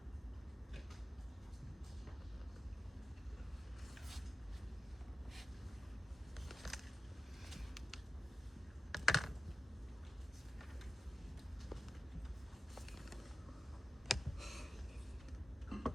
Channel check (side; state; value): both; normal; correlation 0.95